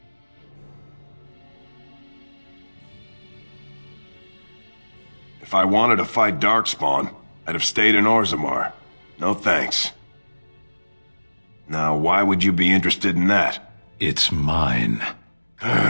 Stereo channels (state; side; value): inverted; both; correlation -1.00